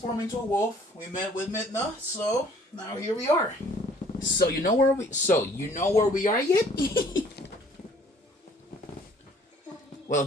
into a wolf. We met with Midna, so now here we are. So you know where we are yet? Well,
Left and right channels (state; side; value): normal; both; correlation 0.56